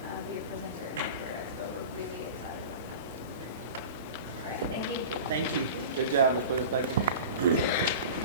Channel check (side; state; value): both; inverted; correlation -0.35